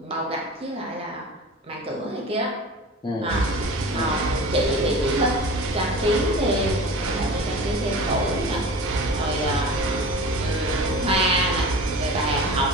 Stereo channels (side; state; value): both; normal; correlation 0.36